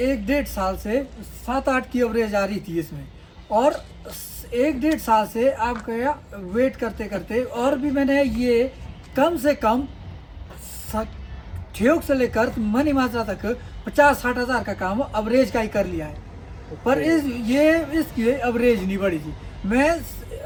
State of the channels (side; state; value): both; identical; correlation 1.00